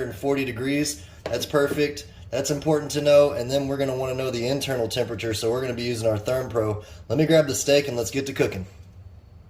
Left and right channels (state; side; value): identical; both; correlation 1.00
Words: degrees. That's perfect. That's important to know. And then we're going to want to know the internal temperature, so we're going to be using our ThermPro. Let me grab the steak and let's get to cooking.